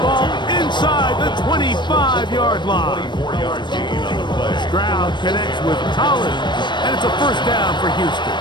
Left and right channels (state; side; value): late; right; 0.22 ms